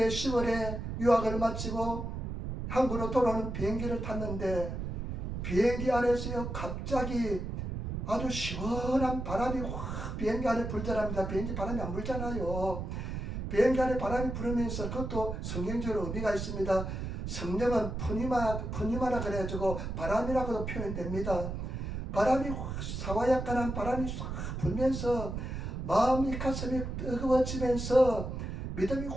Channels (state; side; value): noise; right; rumble, 4 dB below the sound